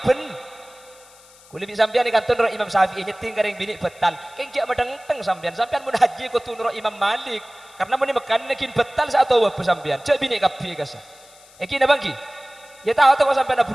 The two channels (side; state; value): left; noise; hiss, 25 dB below the sound